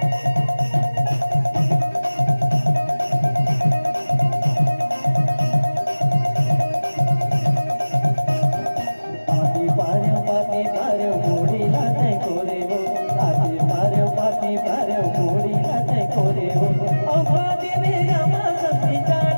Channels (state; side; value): inverted; both; correlation -1.00